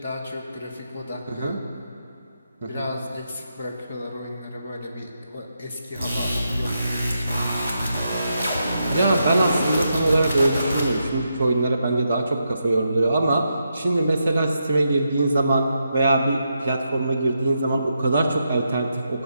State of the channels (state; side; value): inverted; both; correlation -0.83